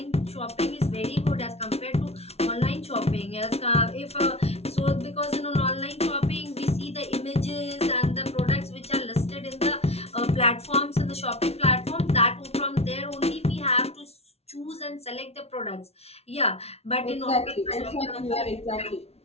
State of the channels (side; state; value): right; late; 0.30 ms